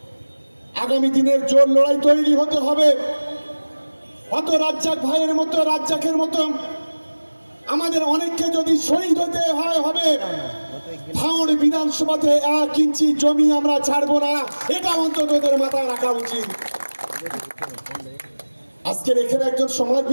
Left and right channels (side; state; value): both; inverted; correlation -1.00